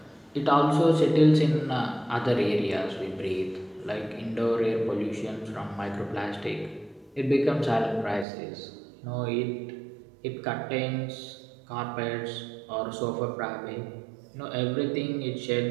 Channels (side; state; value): left; drops out; at 8.2 s